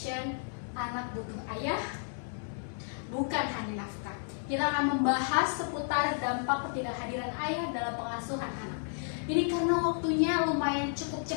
anak butuh ayah, bukan hanya nafkah. Kita akan membahas seputar dampak ketidakhadiran ayah dalam pengasuhan anak. Ini karena waktunya lumayan cukup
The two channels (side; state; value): right; silent; digital silence